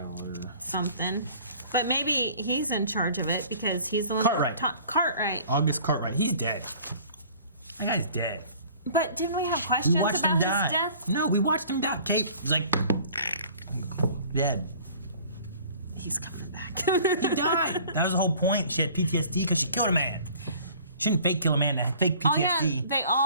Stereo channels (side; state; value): both; inverted; correlation -0.50